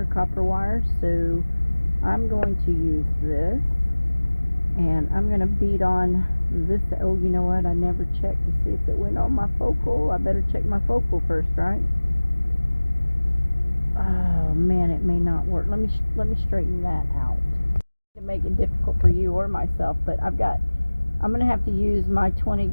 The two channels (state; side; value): inverted; both; correlation -1.00